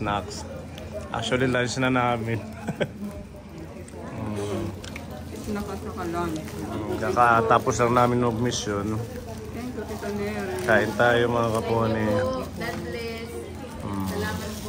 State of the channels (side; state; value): both; identical; correlation 1.00